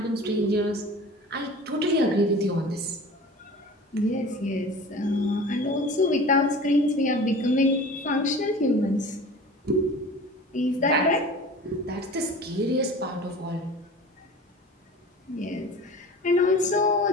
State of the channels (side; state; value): both; normal; correlation 0.39